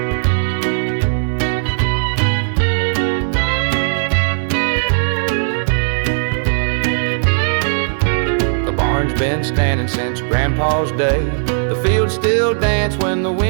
Been standing since Grandpa's day. The fields still dance when the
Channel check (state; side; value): silent; left; digital silence